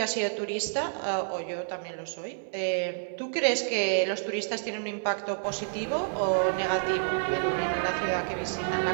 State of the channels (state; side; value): silent; left; 59 dB below the other